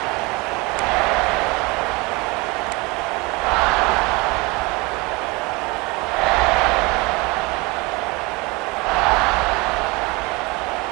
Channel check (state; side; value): quieter; left; 25.6 dB